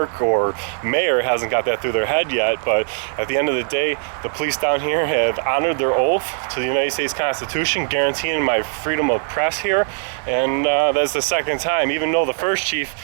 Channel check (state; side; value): silent; left; 66 dB below the other